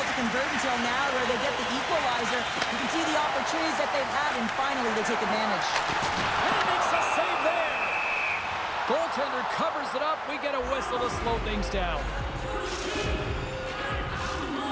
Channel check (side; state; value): both; identical; correlation 1.00